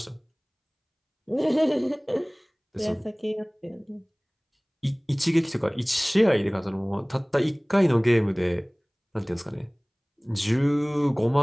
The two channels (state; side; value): identical; both; correlation 1.00